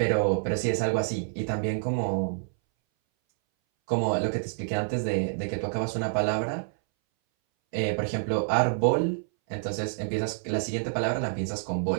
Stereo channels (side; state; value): left; silent; 60 dB below the other